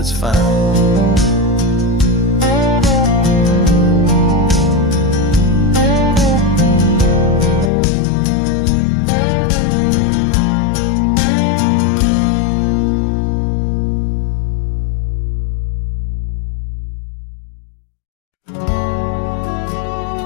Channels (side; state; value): right; drops out; at 7.7 s